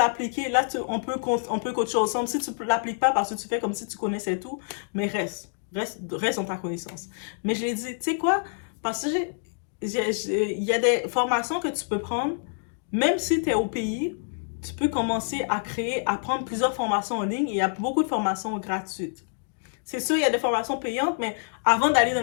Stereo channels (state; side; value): silent; right; digital silence